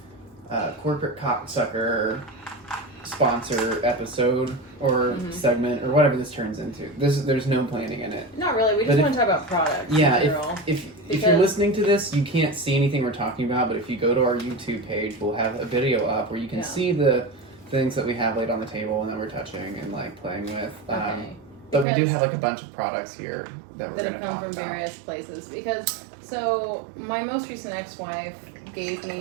corporate cocksucker sponsor episode or segment or whatever this turns into. There's no planning in it. Not really. We just want to talk about products. Yeah, if you're listening to this, you can't see anything we're talking about, but if you go to our YouTube page, we'll have a video up where you can see the things that we have laid on the table and that we're touching and like playing with. But we do have like a bunch of products here that we're going to talk about. That have come from various places. So my most recent ex-wife gave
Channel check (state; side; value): drops out; left; at 21.9 s